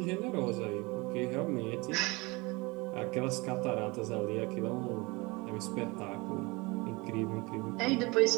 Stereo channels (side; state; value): left; quieter; 25.1 dB